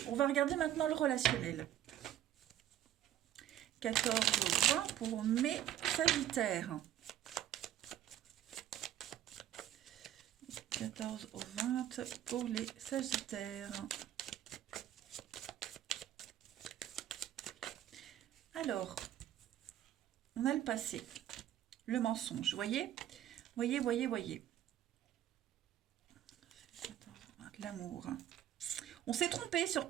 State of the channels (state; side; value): quieter; left; 11.8 dB